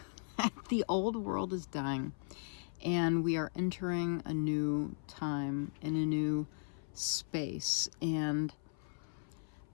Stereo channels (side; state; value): right; silent; 53 dB below the other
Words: The old world is dying. And we are entering a new time in a new space. And